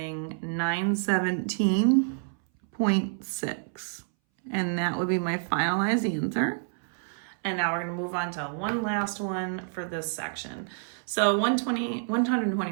917.6. And that would be my finalized answer. And now we're going to move on to one last one for this section. So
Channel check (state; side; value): silent; left; 59 dB below the other